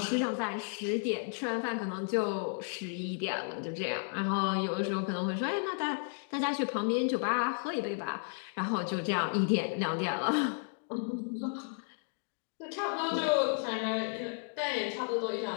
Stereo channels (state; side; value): silent; right; 56 dB below the other